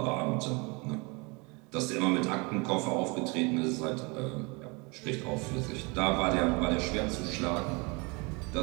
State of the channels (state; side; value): quieter; left; 28.8 dB